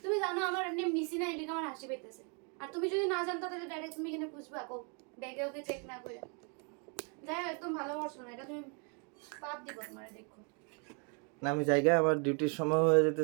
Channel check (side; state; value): left; quieter; 36.8 dB